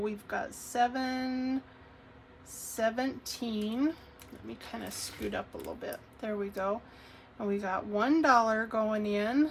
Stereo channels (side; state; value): both; identical; correlation 1.00